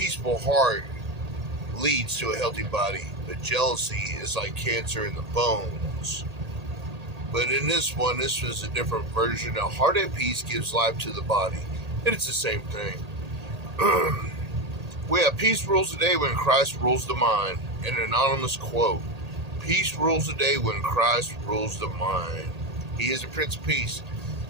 heart leads to a healthy body, but jealousy is like cancer in the bones. But in this one, this was a different version. A heart at peace gives life to the body. And it's the same thing. We have peace rules the day when Christ rules the mind. An anonymous quote. Peace rules the day when Christ rules the mind. He is the Prince of Peace,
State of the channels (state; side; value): late; left; 1.8 ms